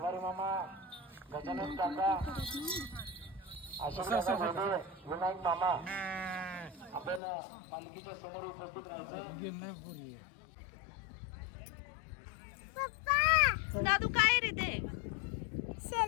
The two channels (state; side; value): drops out; right; at 7.2 s